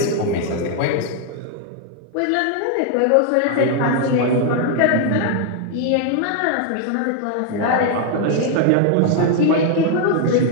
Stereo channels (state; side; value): different; both; correlation 0.00